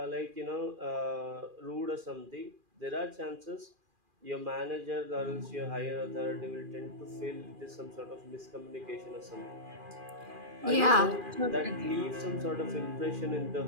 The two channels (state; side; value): late; left; 2.4 ms